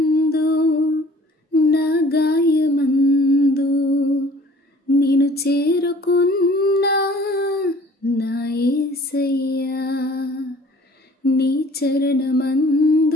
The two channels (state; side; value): normal; both; correlation 0.52